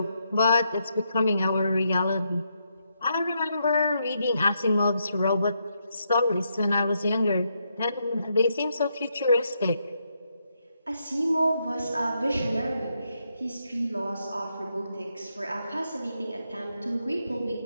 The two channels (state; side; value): inverted; both; correlation -0.80